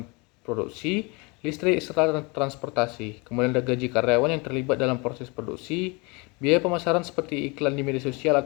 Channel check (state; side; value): quieter; right; 28.1 dB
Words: produksi, listrik, serta transportasi. Kemudian ada gaji karyawan yang terlibat dalam proses produksi, biaya pemasaran seperti iklan di media sosial